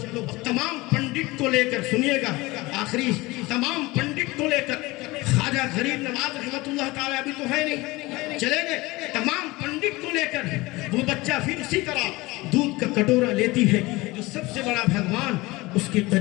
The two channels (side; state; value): right; quieter; 21.5 dB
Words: تمام پنڈت کو لے کر سنیے گا، آخری تمام پنڈت کو لے کر خواجہ غریب نواز رحمت اللہ تعالیٰ ابھی تو ہے نہیں، چلے گئے، تمام پنڈت کو لے کر وہ بچہ پھر اسی طرح دودھ کا کٹورا لیتی ہے جو سب سے بڑا بھگوان اس کے